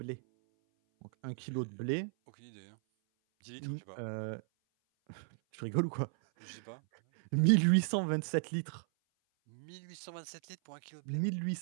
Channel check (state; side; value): silent; left; 54 dB below the other